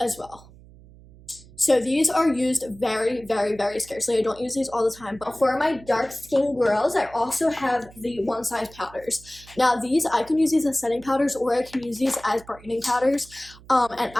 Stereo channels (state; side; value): noise; right; hum, 22 dB below the sound